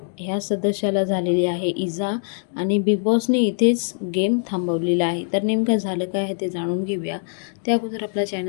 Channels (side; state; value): right; silent; digital silence